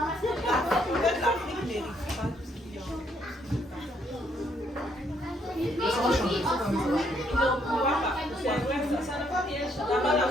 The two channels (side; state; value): both; normal; correlation 0.71